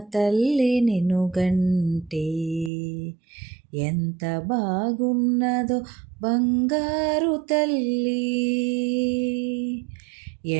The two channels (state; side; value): drops out; left; at 2.7 s